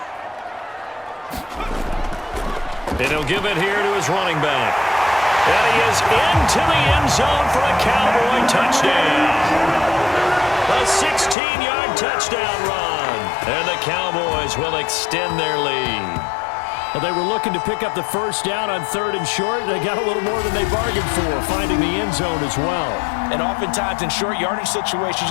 And he'll give it here to his running back. And he is into the end zone for a Cowboy touchdown. A 16-yard touchdown run. And the Cowboys will extend their lead. Well, they were looking to pick up the first down on 3rd and short. They got a little more than they bargained for, finding the end zone as well. And oftentimes in short yardage situations,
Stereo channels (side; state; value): right; drops out; at 11.4 s